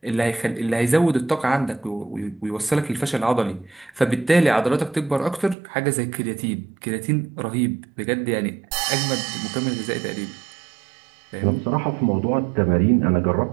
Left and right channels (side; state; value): left; drops out; at 5.6 s